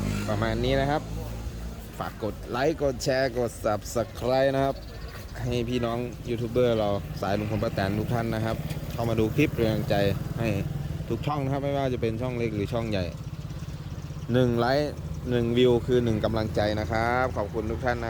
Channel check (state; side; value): identical; both; correlation 1.00